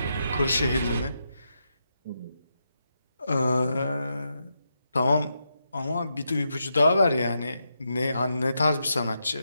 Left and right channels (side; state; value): both; inverted; correlation -0.84